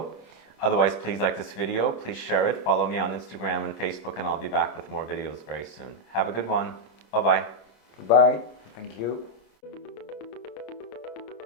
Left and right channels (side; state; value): right; late; 26 ms